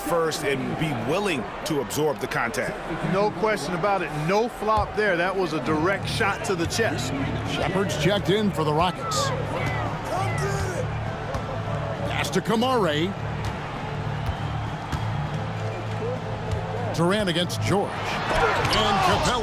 and be willing to absorb the contact. No question about it. No flop there. That was a direct shot to the chest. Shepard's checked in for the Rockets. Pass to Kamare. Durant against George. And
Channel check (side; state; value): both; identical; correlation 1.00